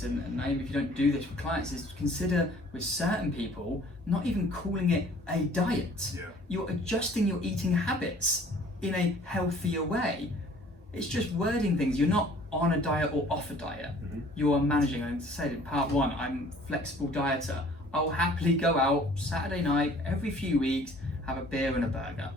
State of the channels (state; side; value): normal; both; correlation 0.53